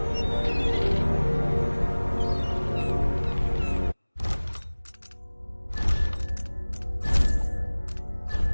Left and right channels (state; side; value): inverted; both; correlation -1.00